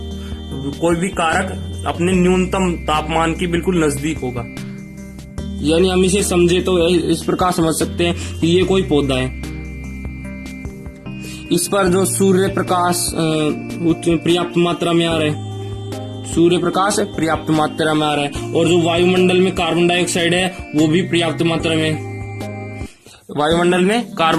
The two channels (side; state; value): both; identical; correlation 1.00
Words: कोई भी कारक अपने न्यूनतम तापमान के बिल्कुल नजदीक होगा। यानी हम इसे समझे तो इस प्रकार समझ सकते हैं कि ये कोई पौधा है, इस पर जो सूर्य प्रकाश पर्याप्त मात्रा में आ रहा है, सूर्य प्रकाश पर्याप्त मात्रा में आ रहा है, और जो वायुमंडल में कार्बन डाइऑक्साइड है वो भी पर्याप्त मात्रा में, वायुमंडल में